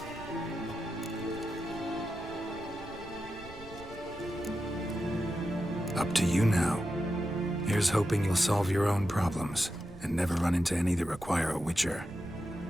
Up to you now. Here's hoping you'll solve your own problems, and never run into any that require a Witcher.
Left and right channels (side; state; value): right; noise; rumble, 16 dB below the sound